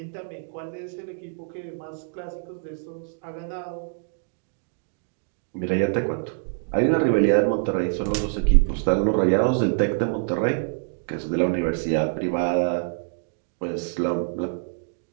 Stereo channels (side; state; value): left; silent; digital silence